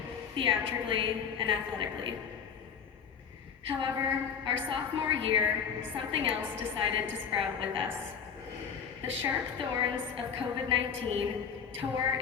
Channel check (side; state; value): right; quieter; 7.1 dB